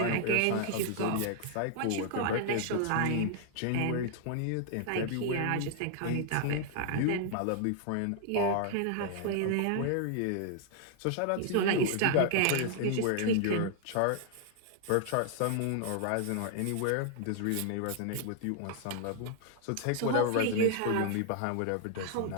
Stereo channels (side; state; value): both; different; correlation 0.00